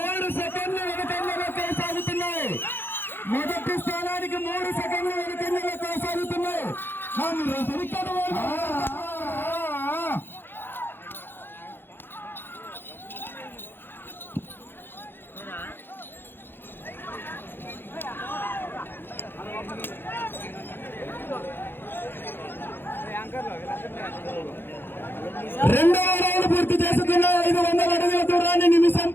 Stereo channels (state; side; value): late; right; 0.10 ms